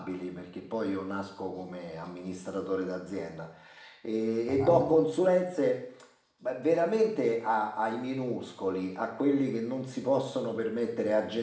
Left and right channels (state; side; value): identical; both; correlation 1.00